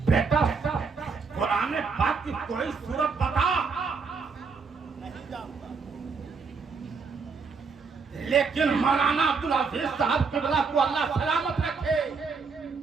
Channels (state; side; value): quieter; left; 5.0 dB